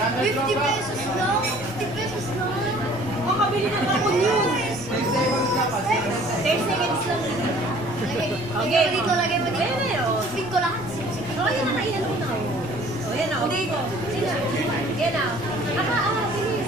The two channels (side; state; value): both; normal; correlation 0.53